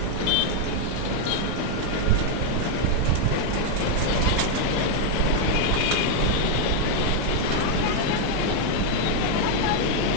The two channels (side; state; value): both; different; correlation 0.00